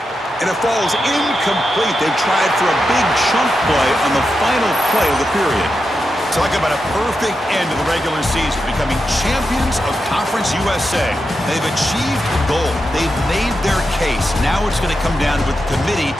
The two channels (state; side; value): normal; both; correlation 0.88